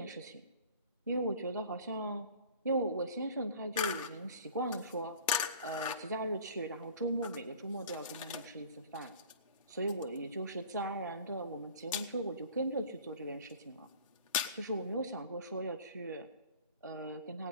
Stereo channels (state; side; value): inverted; both; correlation -0.45